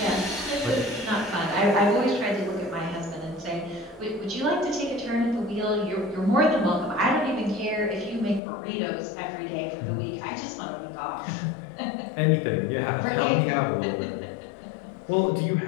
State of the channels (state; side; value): drops out; right; at 8.4 s